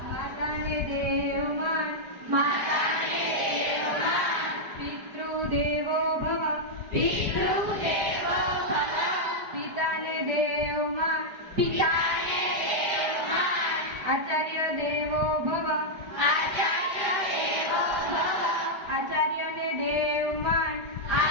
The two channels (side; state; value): left; late; 4.9 ms